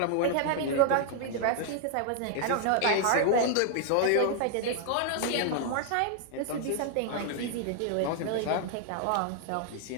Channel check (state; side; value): different; both; correlation 0.00